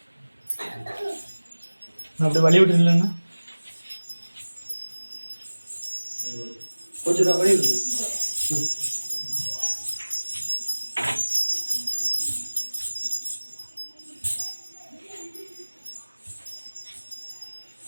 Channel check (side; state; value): both; inverted; correlation -1.00